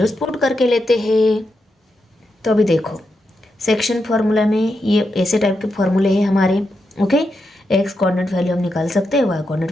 पुट करके लेते हैं। तो अभी देखो सेक्शन फॉर्मूला में ये ऐसे टाइप के फॉर्मूले हैं हमारे। ओके, एक्स कोऑर्डिनेट वैल्यू हम निकाल सकते हैं, वाई कोऑर्डिनेट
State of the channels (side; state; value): both; normal; correlation 0.85